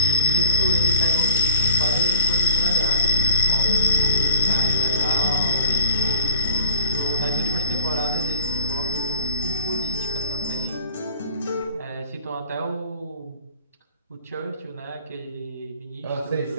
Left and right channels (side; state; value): both; inverted; correlation -0.40